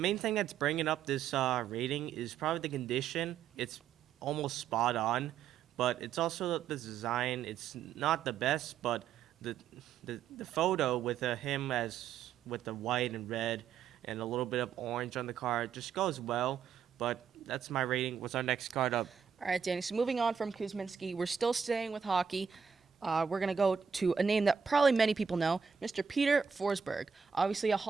thing that's bringing up this rating is probably the condition. It's almost spot on. But it's also the design. It's not the best, but the photo with him as with the white and red and a little bit of orange on the card just goes well. But that's my rating. What's our next card up? All right, Danny. So moving on from Kuzminsky, we're still staying with hockey. We're going to go to a name that probably many people know, Mr. Peter Forsberg. Obviously a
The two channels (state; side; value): quieter; left; 7.0 dB